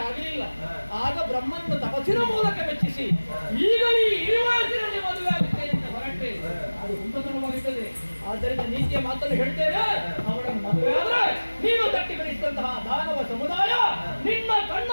ಆಗಲಿಲ್ಲ. ಆಗ ಬ್ರಹ್ಮನ ತಪಸ್ಸಿನ ಮೂಲಕ ಮೆಚ್ಚಿಸಿ ಈಗ ಈ ವಯಸ್ಸಿನಲ್ಲಿ ಮದುವೆ ಆಗುತ್ತೆ ಅಂತ ಹೊರಟೆ ಅದು ಹುಮ್ಮತನವಾಗುತ್ತದೆ. ಆದ್ದರಿಂದ ನೀತಿಯ ಮಾತನ್ನು ಹೇಳ್ತೇವೆ. ಅವಳನ್ನು ಮದುವೆ ಆದ್ರೆ ನೀನು ತಟ್ಟಿ ಬೆಳೆಸಿದಂತಹ ದಾನವ ಸಮುದಾಯ ನಿನ್ನ ಕಣ್ಣ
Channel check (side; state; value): both; inverted; correlation -1.00